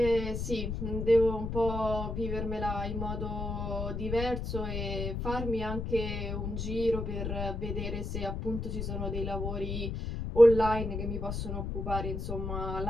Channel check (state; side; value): noise; left; rumble, 3 dB below the sound